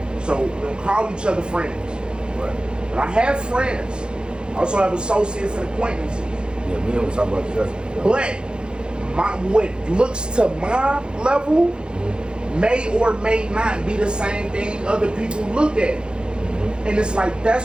so we don't call each other friends. Right. But I have friends. I also have associates and acquaintances. Yeah, me and we talk about this. But what looks to my level may or may not be the same thing other people look at. And it's like,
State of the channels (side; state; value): left; late; 0.050 ms